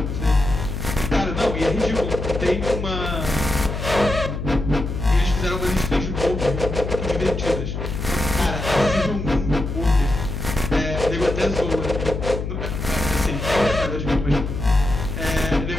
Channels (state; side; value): noise; left; hum, 4 dB below the sound